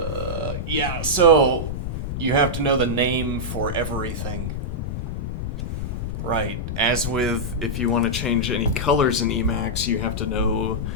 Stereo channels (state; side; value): noise; left; rumble, 4 dB below the sound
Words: yeah, so you have to know the name for everything. Right, as with if you want to change any colors in Emacs, you have to know